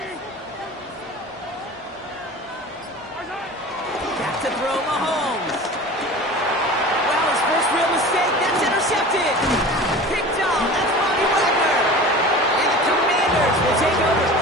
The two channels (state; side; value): normal; both; correlation 0.37